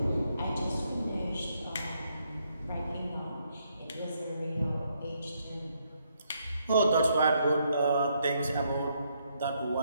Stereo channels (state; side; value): inverted; both; correlation -0.75